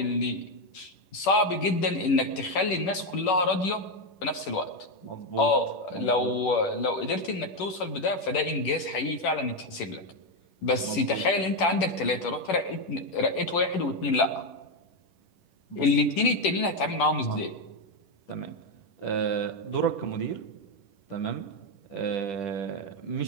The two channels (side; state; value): right; late; 10 ms